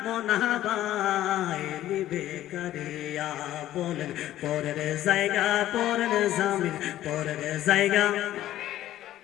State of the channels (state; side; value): quieter; right; 13.5 dB